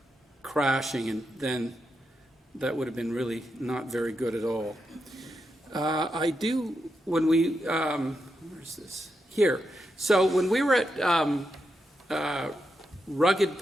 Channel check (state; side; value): normal; both; correlation 0.85